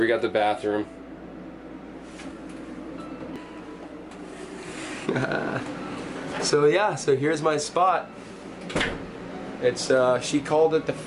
got the bathroom. So yeah, so here's my spot. It's she called it the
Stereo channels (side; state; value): both; identical; correlation 1.00